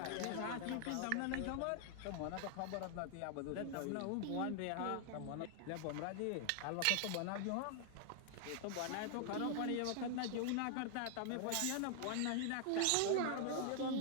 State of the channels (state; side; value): different; both; correlation 0.00